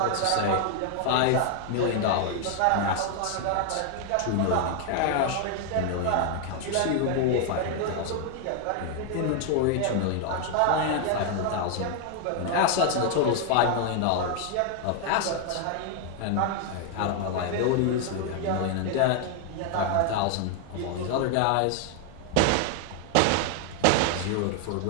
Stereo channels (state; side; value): different; both; correlation 0.00